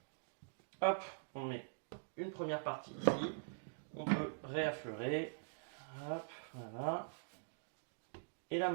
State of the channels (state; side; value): silent; left; digital silence